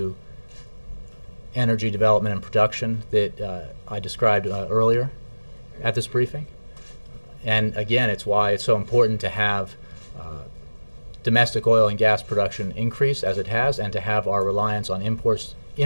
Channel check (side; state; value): both; inverted; correlation -1.00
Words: energy development and production that I described earlier at this briefing. And again, it's why it's so important to have domestic oil and gas production increase as it has, and to have our reliance on